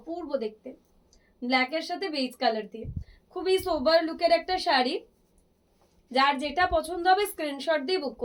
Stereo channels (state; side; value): identical; both; correlation 1.00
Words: দেখতে, ব্ল্যাকের সাথে বেজ কালার দিয়ে, খুবই সোবার লুকের একটা শাড়ি। যার যেটা পছন্দ হবে স্ক্রিনশট দিয়ে বুক